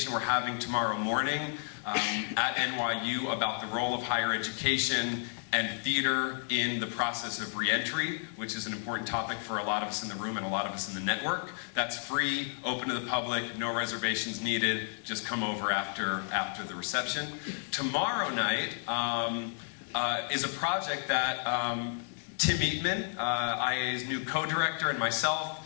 we're having tomorrow morning at NYU about the role of higher education and theater in the process of reentry, which is an important topic for a lot of us in the room and a lot of us in the network. That's free, open to the public, no reservations needed. Just come over after the reception. Tomorrow night is a project that Tim Eatman, IA's new co-director, and myself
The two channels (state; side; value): silent; right; digital silence